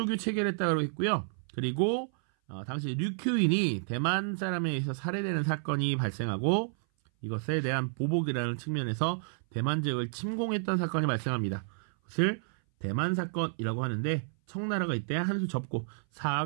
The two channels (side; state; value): left; silent; 57 dB below the other